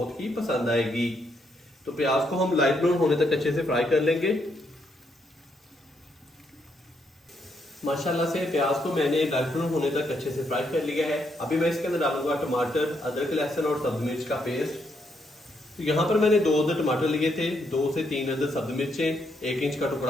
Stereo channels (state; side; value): normal; both; correlation 0.76